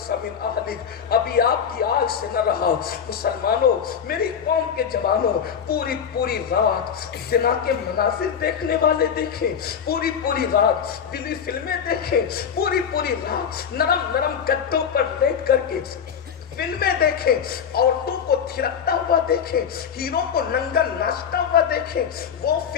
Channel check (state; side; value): quieter; right; 7.6 dB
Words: من اہلک، ابھی آپ کی آگ سے نہ رہا۔ مسلمانوں، میری قوم کے جوانوں، پوری رات زنا کے مناظر دیکھنے والے دیکھیں، پوری رات دلی فلمیں دیکھیں، پوری رات نرم گدوں پر لیٹ کر کے فلمیں دیکھیں، عورتوں کو تھرکتا ہوا دیکھیں، ہیروں کو ننگا ناچتا ہوا دیکھیں۔ وہ